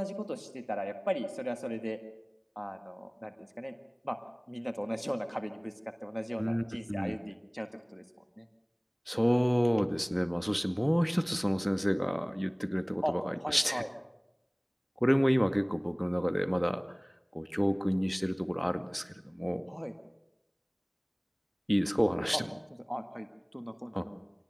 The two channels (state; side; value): identical; both; correlation 1.00